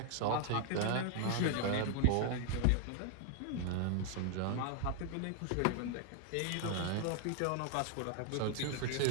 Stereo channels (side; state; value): both; different; correlation 0.00